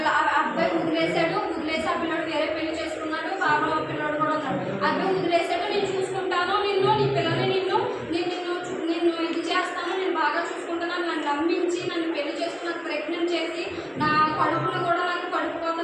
అబ్బాయి వదిలేసి ఆ పిల్లడు వేరే పెళ్లి చేసుకున్నాడు. బాబా పిల్లడు కూడా ఉన్నాడు. అబ్బాయి వదిలేసాడు, నేను చూసుకుంటాను, నీ పిల్లల్ని నిన్ను ఇది చేస్తాను, నేను బాగా చూసుకుంటాను, నన్ను నమ్మించి నన్ను పెళ్లి చేసుకుని ప్రెగ్నెంట్ చేసి నా కడుపును కూడా నాకు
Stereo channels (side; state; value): both; identical; correlation 1.00